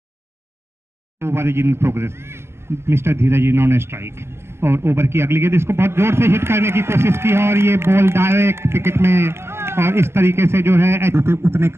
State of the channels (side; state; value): left; late; 0.12 ms